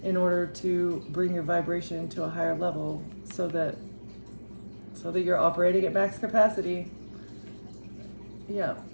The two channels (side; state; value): both; inverted; correlation -1.00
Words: in order to bring your vibration to a higher level so that you're operating at max capacity. Yeah,